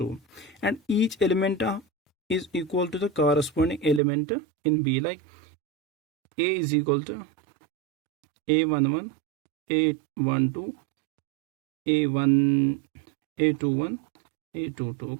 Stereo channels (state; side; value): drops out; left; at 4.0 s